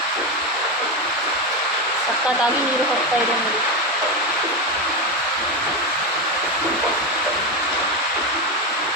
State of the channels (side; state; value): both; normal; correlation 0.13